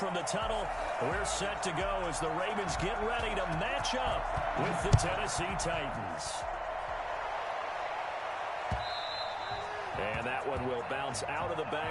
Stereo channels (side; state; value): both; identical; correlation 1.00